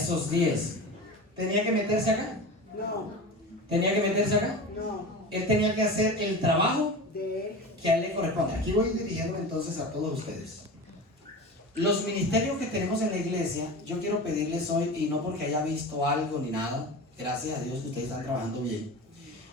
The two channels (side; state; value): both; normal; correlation 0.30